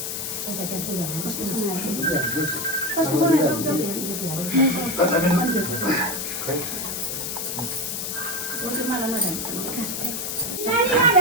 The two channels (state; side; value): noise; left; hiss, 4 dB below the sound